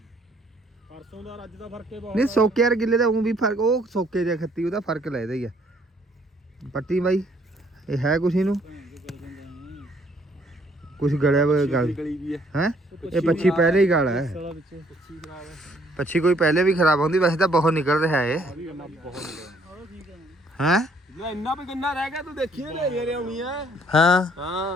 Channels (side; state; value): both; normal; correlation 0.64